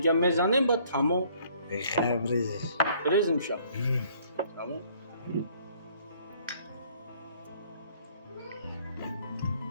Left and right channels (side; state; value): both; inverted; correlation -0.60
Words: میزنیم با تمام خیلی بریزش بریزیم شب تمام